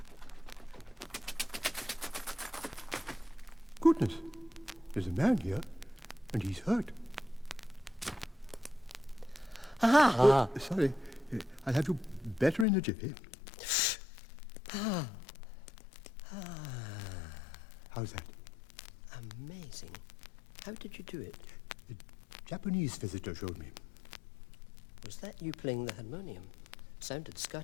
Goodness, there's a man here, and he's hurt. Sorry, I'll have you better in a jiffy. How's that? Amazing. How did you do it? The Japanese visitor showed me. Was that you playing the harmonium? Sounded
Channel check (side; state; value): right; drops out; at 12.7 s